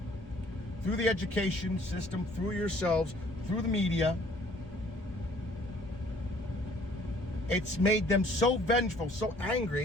through the education system, through yourselves, through the media. It's made them so vengeful, so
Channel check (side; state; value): both; normal; correlation 0.57